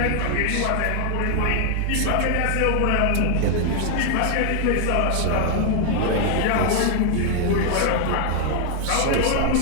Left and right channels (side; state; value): both; different; correlation 0.00